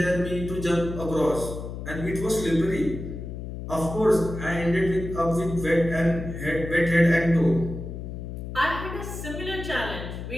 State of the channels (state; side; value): noise; left; hum, 8 dB below the sound